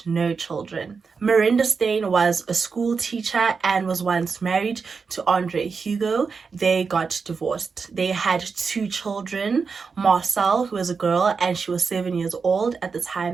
no children. Miranda Steyn was a school teacher and was once married to Andre Hugo. They got divorced. They had 2 children, Marcel, who was a girl, and she was 7 years old at the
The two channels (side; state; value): left; quieter; 5.2 dB